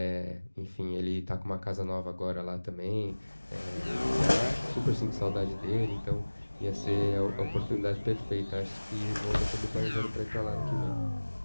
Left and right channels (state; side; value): inverted; both; correlation -1.00